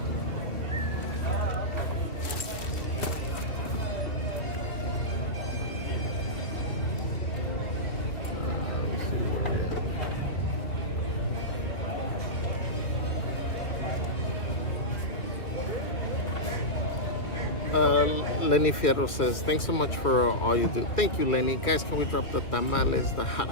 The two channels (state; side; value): late; right; 2.2 ms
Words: Lenny Fierro says, thanks so much for all you do. Thank you, Lenny. Guys, can we drop the tamales, the